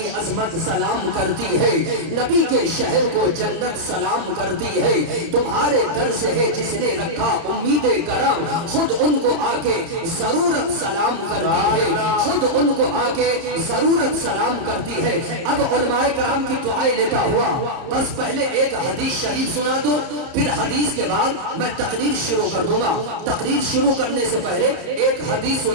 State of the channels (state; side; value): late; left; 30 ms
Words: عظمت سلام کرتی ہے. نبی کے شہر کو جنت سلام کرتی ہے. تمہارے در سے ہے جس نے رکھا امید کرم. خود ان کو آ کے ضرورت سلام کرتی ہے. خود ان کو آ کے ضرورت سلام کرتی ہے. اب علماء کرام کی دعائیں لیتا ہوا بس پہلے ایک حدیث شریف سنا دو، پھر حدیث کے بعد میں تقریر شروع کر دوں گا. تقریر شروع کرنے سے پہلے ایک حدیث